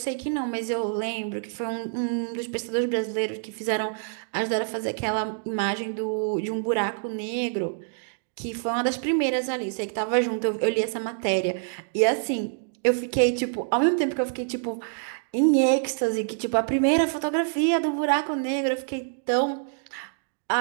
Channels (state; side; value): silent; left; digital silence